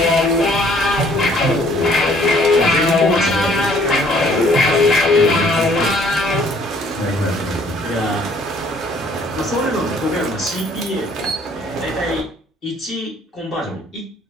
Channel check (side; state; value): both; normal; correlation 0.60